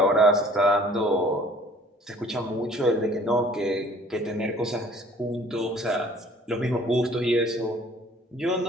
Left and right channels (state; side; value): normal; both; correlation 0.53